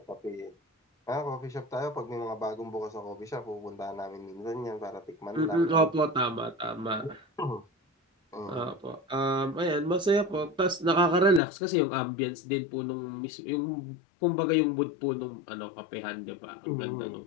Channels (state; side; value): drops out; right; at 11.4 s